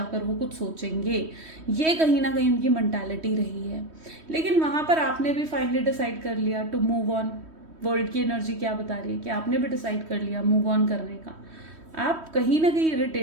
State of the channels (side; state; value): left; late; 3.1 ms